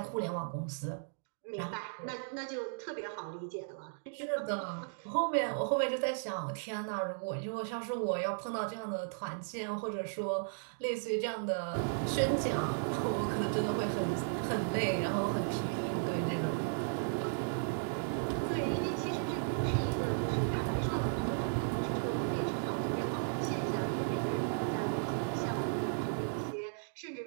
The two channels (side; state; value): left; silent; digital silence